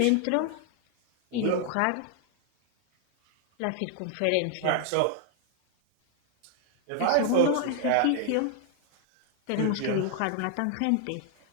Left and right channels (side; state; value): both; different; correlation 0.00